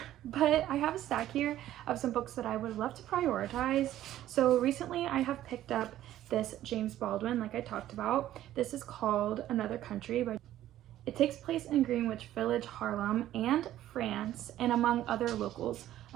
but I have a stack here of some books that I would love to prioritize. So recently I have picked up this James Baldwin, like I talked about. This is called Another Country. It takes place in Greenwich Village, Harlem, and France, and among other locals.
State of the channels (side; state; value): left; quieter; 13.1 dB